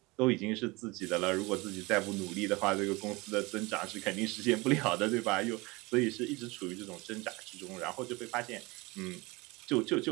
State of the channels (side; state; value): left; quieter; 24.0 dB